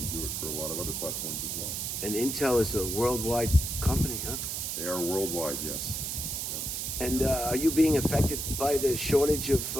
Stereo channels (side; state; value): right; noise; hiss, 3 dB below the sound